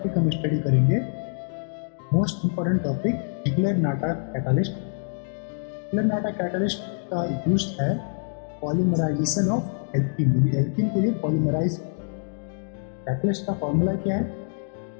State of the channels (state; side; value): silent; right; digital silence